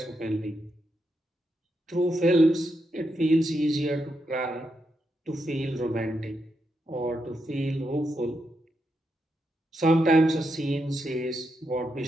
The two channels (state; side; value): normal; both; correlation 0.83